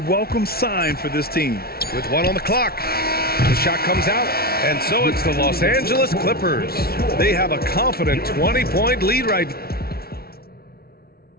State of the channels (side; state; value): right; late; 0.44 ms